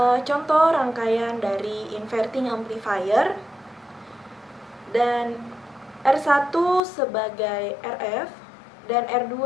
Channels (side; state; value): right; drops out; at 6.8 s